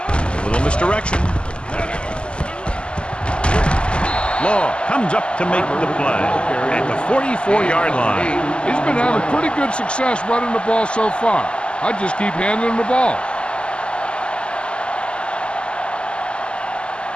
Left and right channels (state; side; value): late; right; 0.052 ms